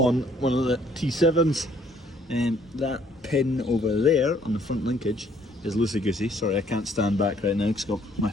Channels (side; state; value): both; normal; correlation 0.63